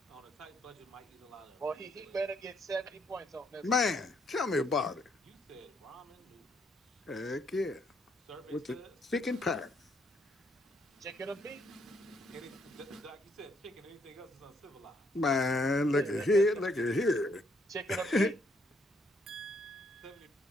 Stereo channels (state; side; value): normal; both; correlation 0.71